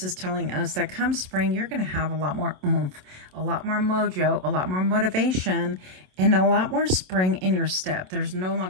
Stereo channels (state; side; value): late; left; 27 ms